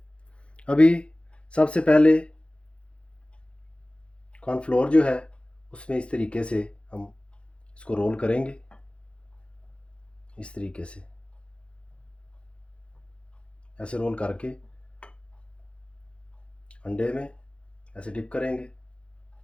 अभी सबसे पहले कॉर्नफ्लोर जो है उसमें इस तरीके से हम इसको रोल करेंगे। इस तरीके से ऐसे रोल करके अंडे में ऐसे डिप करेंगे।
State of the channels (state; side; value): late; right; 0.059 ms